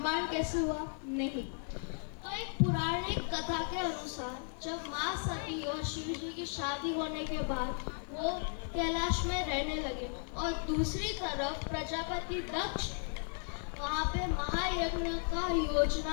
कैसे हुआ? नहीं। तो एक पौराणिक कथा के अनुसार जब माँ सती और शिव जी की शादी होने के बाद वो कैलाश में रहने लगे और दूसरी तरफ प्रजापति दक्ष वहाँ पे महायज्ञ का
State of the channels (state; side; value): silent; right; 54 dB below the other